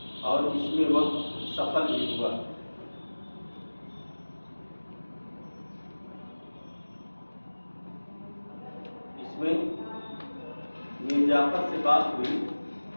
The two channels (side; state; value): both; inverted; correlation -1.00